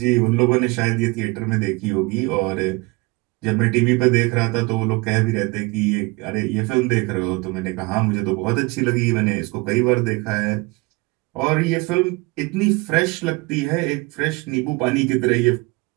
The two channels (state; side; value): quieter; left; 25.4 dB